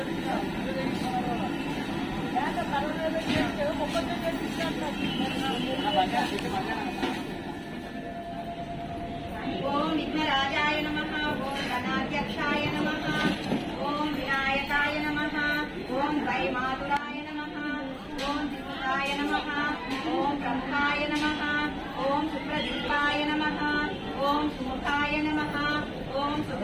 ఓం విఘ్నరాజాయ నమః ఓం గణాధ్యక్షాయ నమః ఓం వినాయకాయ నమః ఓం వైమాతురాయ నమః ఓం దిగుతాయ నమః ఓం బ్రహ్మాయ నమః ఓం సుప్రదీపాయ నమః ఓం సుముఖాయ నమః ఓం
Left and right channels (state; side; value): identical; both; correlation 1.00